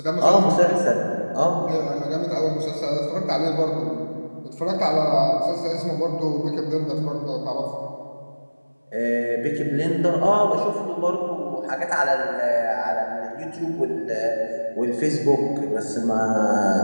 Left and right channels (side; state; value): both; inverted; correlation -1.00